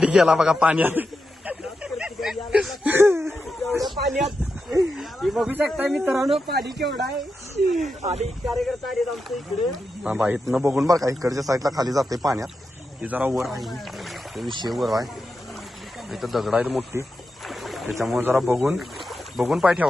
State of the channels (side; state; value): both; normal; correlation 0.88